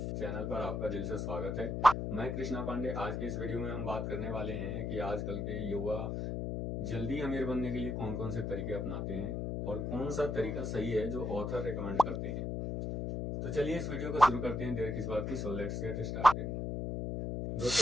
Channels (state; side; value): noise; left; hum, 2 dB below the sound